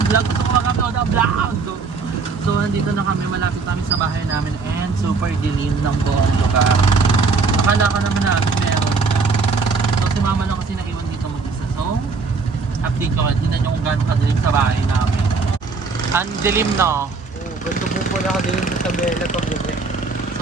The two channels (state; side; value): quieter; left; 4.5 dB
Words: vlog. Gusto ko mag-upload ng vlog! So nandito na kami. Malapit kami sa bahay namin. And super dilim ng buong lugar. Akala ka naman namin meron. So si mama lang kasi naiwan dito mag-isa. So update ko nga. Tingnan nyo kung gano'ng kadilim sa bahay namin. Ang dilim no? Ganito po pala ka din sa tabela pag gabi.